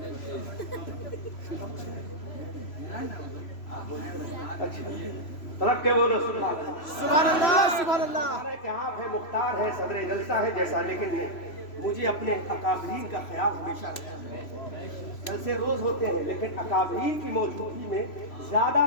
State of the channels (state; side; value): late; right; 3.0 ms